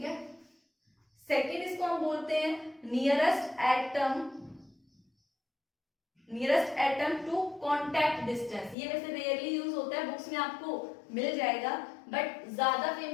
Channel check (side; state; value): right; drops out; at 8.8 s